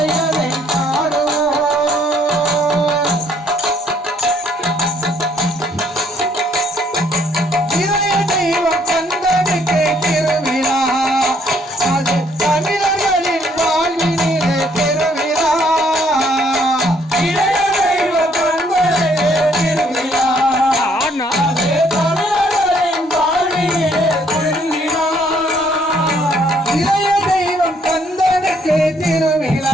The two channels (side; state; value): both; normal; correlation 0.66